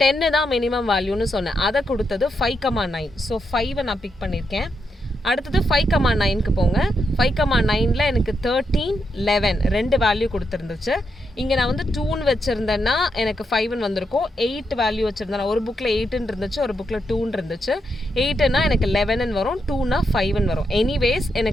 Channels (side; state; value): both; normal; correlation 0.82